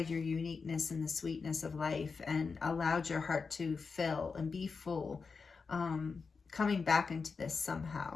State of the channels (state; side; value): quieter; right; 4.9 dB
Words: your uniqueness and the sweetness of life, and allowed your heart to fill and be full. Coming back into this